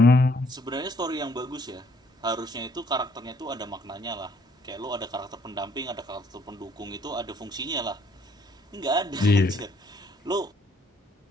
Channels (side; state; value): both; normal; correlation 0.65